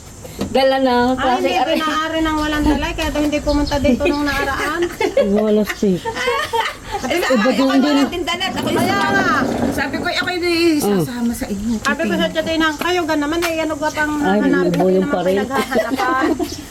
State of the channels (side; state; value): both; identical; correlation 1.00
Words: Dala na Ay, hindi pinaari ng walang dala, kaya daw hindi pumunta dito nung nakaraan. Wala si. Ako natin dalat. Ako Kaya nga. Sabi ko, ako hindi sasama sa inyo. Sabi ko sa Titinang, kayo ga naman eh, ano ga pang Ay, hanapin bubo yung naman pa rin. pinaghahanapan.